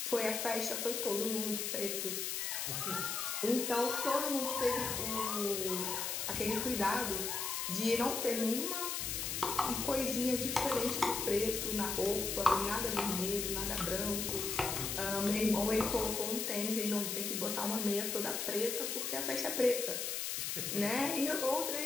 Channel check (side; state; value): left; noise; hiss, 2 dB below the sound